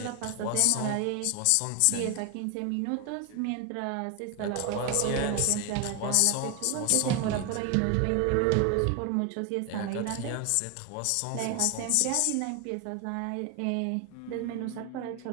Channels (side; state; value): both; different; correlation 0.01